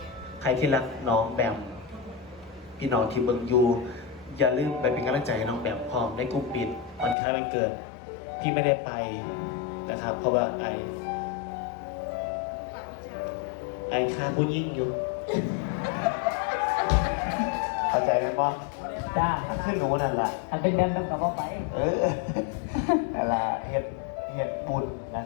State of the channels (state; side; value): drops out; right; at 7.2 s